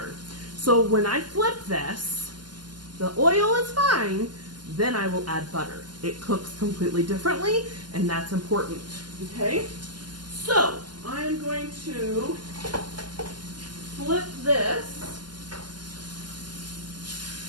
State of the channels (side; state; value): left; late; 0.71 ms